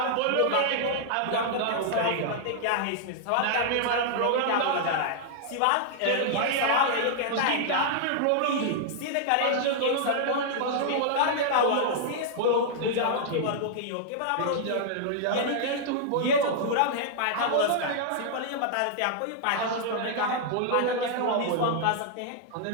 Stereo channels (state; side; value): different; both; correlation -0.01